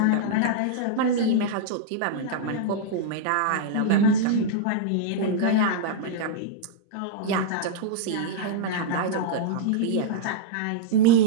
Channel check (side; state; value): both; different; correlation -0.01